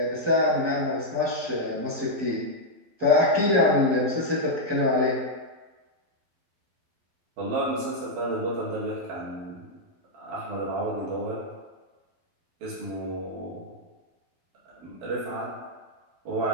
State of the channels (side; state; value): left; late; 12 ms